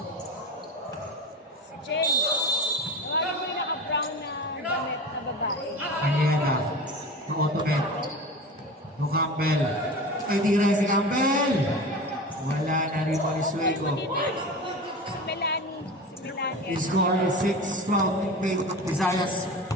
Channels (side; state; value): both; normal; correlation 0.31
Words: Si Jen. Nawala mo yung naka-brown na damit na babae. Kanyera. No Automet. No Campbell. Ay, tira si Campbell. Wala na rin po ni Sueco. Si Melanie. The score is 6-12 in favor of Visayas.